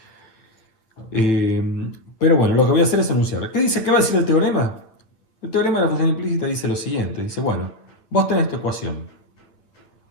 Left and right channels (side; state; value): right; late; 9.5 ms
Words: Pero bueno, lo que voy a hacer es enunciar. ¿Qué dice? ¿Qué va a decir el teorema? El teorema de la función implícita dice lo siguiente. Dice, bueno, vos tenés esta ecuación.